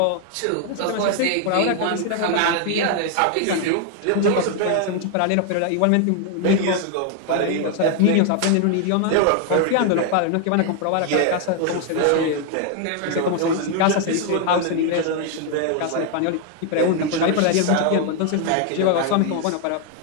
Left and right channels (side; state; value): both; different; correlation 0.00